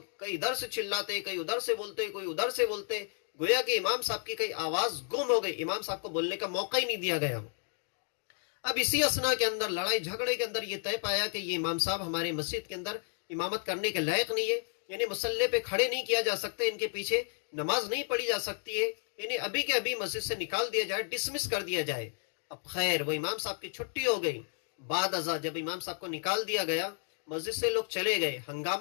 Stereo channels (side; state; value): right; silent; 55 dB below the other